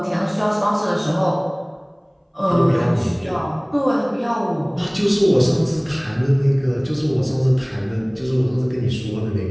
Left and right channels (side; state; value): both; identical; correlation 1.00